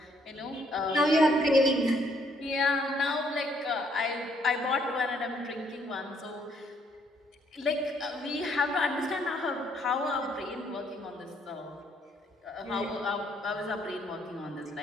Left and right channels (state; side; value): normal; both; correlation 0.68